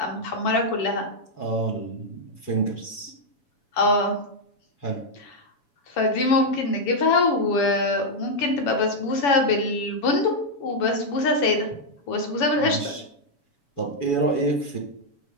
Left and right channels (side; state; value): right; late; 7.1 ms